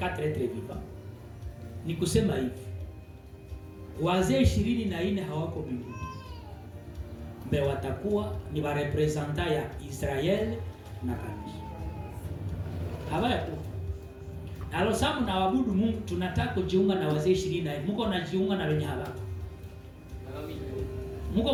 êtres vivants. Ni kusema hivi, wazee 24 hawako mbinguni. Mbe watakuwa ni wa representa ya Israel na kanisa. Hawako. Alo samu na wabudu Mungu, tunataka kujiunga na wazee 24. Mungu anajiunga na wenye hawako. Mungu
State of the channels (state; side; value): identical; both; correlation 1.00